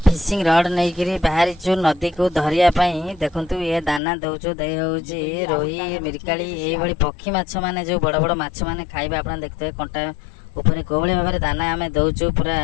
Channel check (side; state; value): right; drops out; at 4.0 s